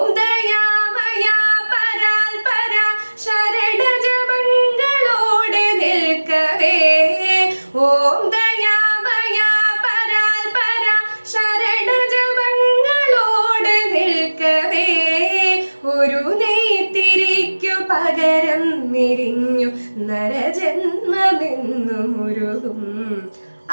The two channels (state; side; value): inverted; both; correlation -1.00